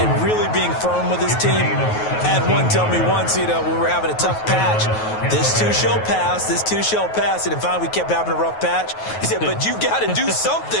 really being firm with his team. I had one tell me once, when we were having a tough patch, this too shall pass, this too shall pass. And finally we kept having a rough patch. He said, but you've got to do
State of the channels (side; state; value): right; late; 9.3 ms